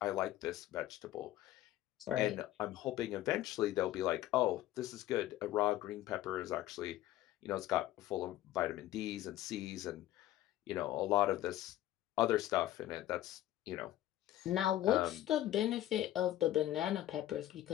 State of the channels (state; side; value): quieter; right; 14.0 dB